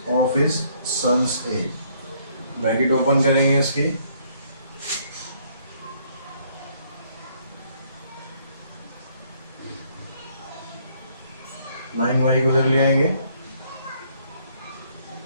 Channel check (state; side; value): inverted; both; correlation -0.67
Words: of his son's age। Bracket open करेंगे इसकी, नाइन वाई को उधर ले आएंगे,